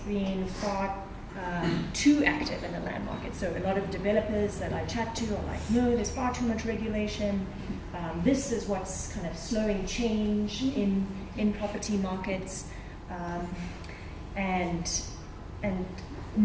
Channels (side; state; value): both; identical; correlation 1.00